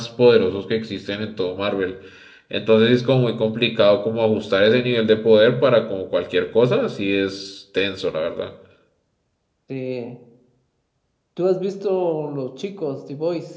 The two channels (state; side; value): identical; both; correlation 1.00